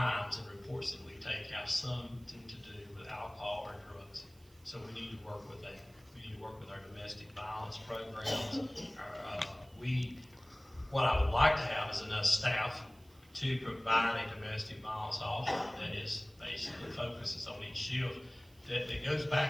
and reports that we take have something to do with alcohol or drugs. So we need to work with that. We need to work with our domestic violence programs. What I would like to have is enough staff to provide a domestic violence officer that is basically focuses on each shift, that goes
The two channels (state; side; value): noise; right; hiss, 29 dB below the sound